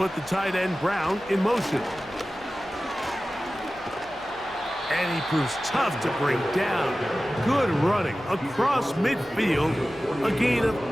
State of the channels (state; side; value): noise; left; hum, 26 dB below the sound